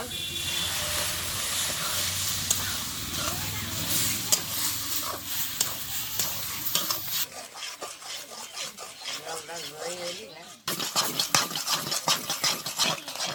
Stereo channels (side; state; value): both; identical; correlation 1.00